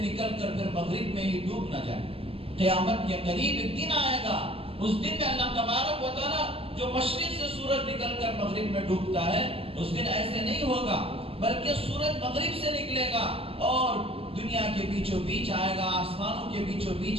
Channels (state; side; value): late; left; 0.28 ms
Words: نکل کر پھر مغرب میں ہی ڈوب نہ جائے۔ قیامت کے قریب ایک دن آئے گا، اس دن میں اللہ تبارک و تعالیٰ جو مشرق سے سورج نکل کر مغرب میں ڈوبتا ہے اس دن ایسے نہیں ہوگا، بلکہ سورج مغرب سے نکلے گا اور دنیا کے بیچوں بیچ آئے گا، آسمانوں کے بیچوں